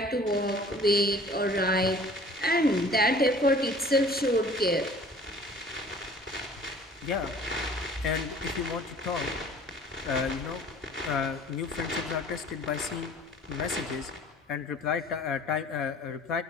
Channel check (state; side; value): normal; both; correlation 0.49